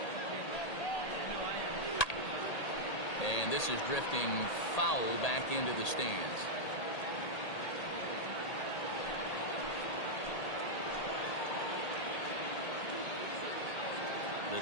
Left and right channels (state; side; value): late; right; 1.8 ms